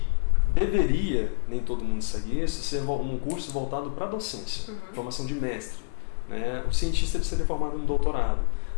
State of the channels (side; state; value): right; silent; 60 dB below the other